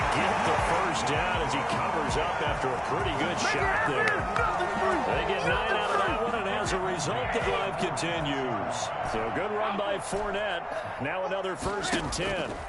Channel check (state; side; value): identical; both; correlation 1.00